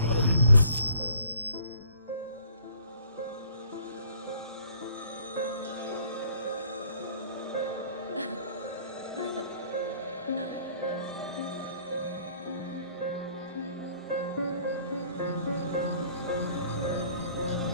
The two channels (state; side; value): inverted; both; correlation -0.58